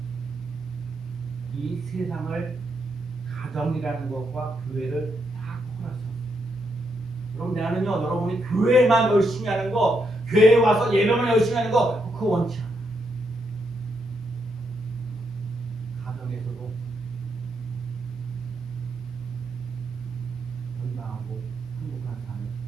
이 세상을 가정이라는 것과 교회를 딱 허락하셨어요. 그럼 나는요, 여러분이 교회만 열심히 하는 거, 교회에 와서 예배만 열심히 하는 거, 그거 원치 않아. 가정에서도 건강하고 행복한 삶을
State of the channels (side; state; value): both; normal; correlation 0.79